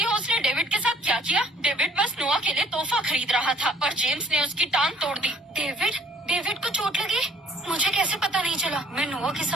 हो उसने डेविड के साथ क्या किया? डेविड बस नोआ के लिए तोहफा खरीद रहा था और जेम्स ने उसकी टांग तोड़ दी। डेविड को चोट लगी? मुझे कैसे पता नहीं चला? मैं नोआ के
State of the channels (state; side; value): normal; both; correlation 0.58